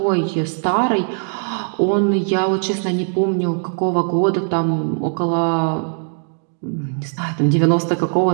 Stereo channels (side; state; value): left; silent; 65 dB below the other